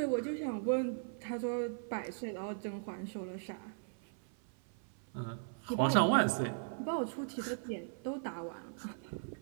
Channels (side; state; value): left; silent; 52 dB below the other